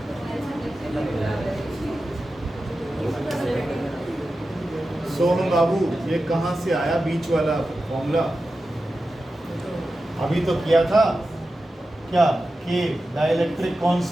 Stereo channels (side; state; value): both; normal; correlation 0.92